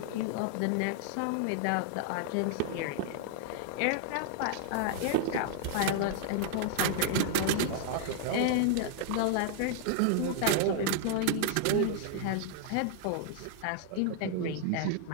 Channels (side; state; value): both; different; correlation 0.00